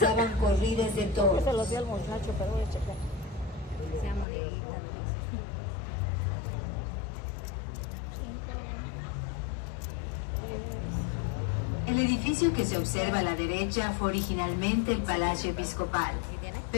corridas de toros. Se los di al muchacho, pero voy a checar. Sea monedita. El edificio que se observa a la derecha fue originalmente el Palacio Episcopal,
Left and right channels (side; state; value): right; drops out; at 4.2 s